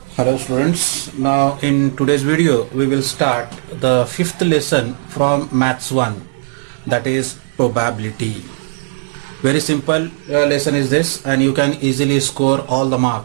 Hello students, now in today's video we will start the fifth lesson from Maths 1, that is probability. Very simple lesson is this, and you can easily score all the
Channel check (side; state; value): left; silent; digital silence